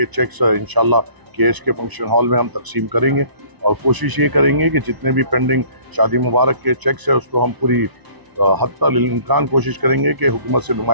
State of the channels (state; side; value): late; left; 1.0 ms